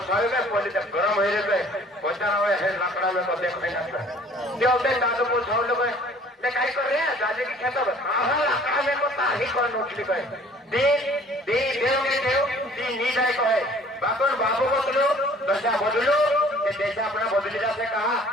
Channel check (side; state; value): both; normal; correlation 0.53